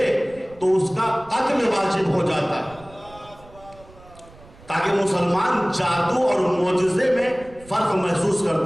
تو اس کا قتل واجب ہو جاتا ہے، تاکہ مسلمان جادو اور معجزے میں فرق محسوس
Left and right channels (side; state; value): right; noise; rumble, 23 dB below the sound